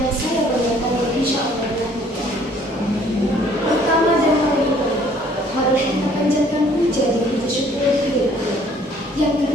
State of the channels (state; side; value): normal; both; correlation 0.59